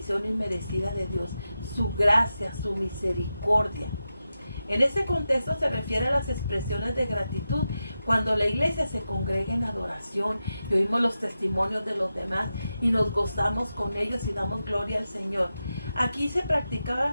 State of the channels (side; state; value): both; inverted; correlation -0.90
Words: inmerecida de Dios, su gracia, su misericordia. En este contexto se refiere a las expresiones de gratitud cuando la iglesia se congrega en adoración y oímos los testimonios de los demás y nos gozamos con ellos y damos gloria al Señor. Aquí